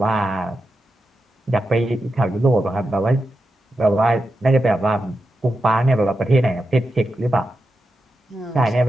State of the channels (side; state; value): both; normal; correlation 0.89